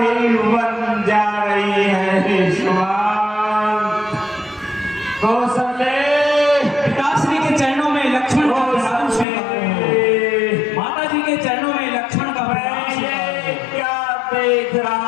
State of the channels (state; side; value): drops out; right; at 9.2 s